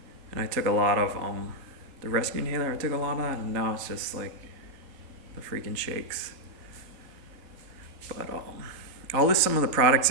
And I took a lot of the rescue inhaler. I took a lot of that, and now it's just like the freaking shakes. But I'll list some of the products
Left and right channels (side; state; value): left; late; 3.8 ms